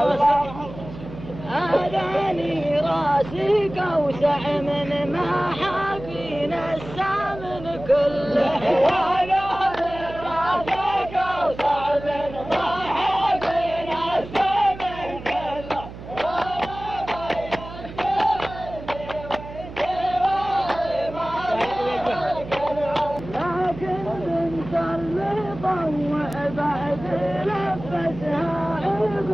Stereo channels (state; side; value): noise; right; hum, 13 dB below the sound